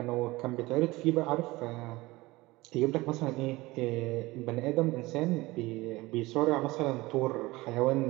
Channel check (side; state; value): left; quieter; 20.6 dB